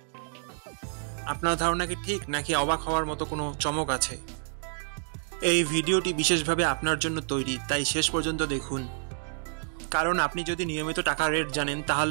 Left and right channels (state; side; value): silent; left; 59 dB below the other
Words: আপনার ধারণা কি ঠিক, নাকি অবাক হওয়ার মতো কোনো চমক আছে? এই ভিডিওটি বিশেষভাবে আপনার জন্য তৈরি, তাই শেষ পর্যন্ত দেখুন। কারণ আপনি যদি নিয়মিত টাকার রেট জানেন,